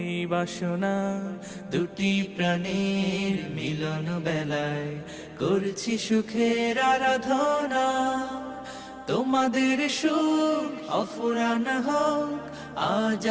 এই বাসনা। দুটি প্রাণীর মিলন বেলায় করছি সুখের আরাধনা। তোমাদের সুখ অফুরান হোক আজ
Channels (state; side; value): identical; both; correlation 1.00